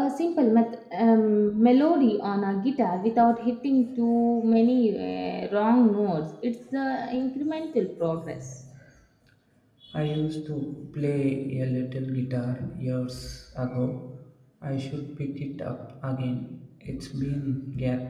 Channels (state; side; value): identical; both; correlation 1.00